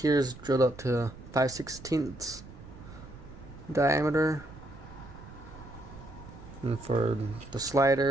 is drilled up to 5/16 diameter, and for the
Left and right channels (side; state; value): right; noise; rumble, 16 dB below the sound